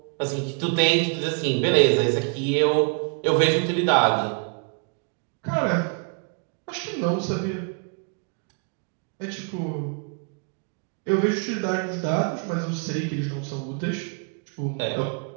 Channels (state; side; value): quieter; left; 39.4 dB